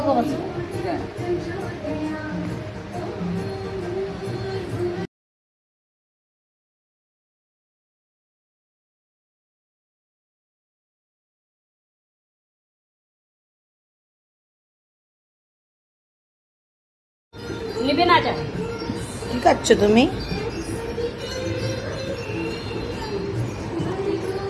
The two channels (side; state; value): both; identical; correlation 1.00